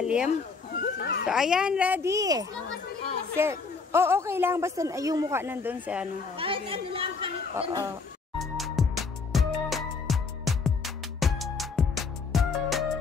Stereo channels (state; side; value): quieter; right; 4.7 dB